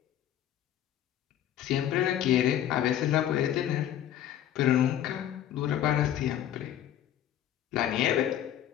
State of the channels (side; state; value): right; quieter; 11.3 dB